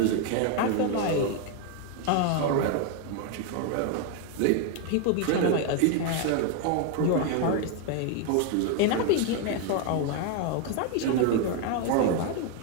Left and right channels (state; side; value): different; both; correlation 0.01